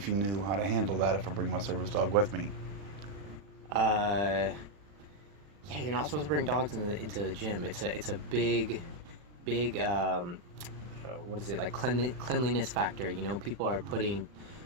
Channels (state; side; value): late; left; 40 ms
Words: you knew how to handle that if I bring my service dog with me. Yeah, you're not supposed to bring dogs into the gym. It's a big, what is it, like cleanliness factor. You know, people are putting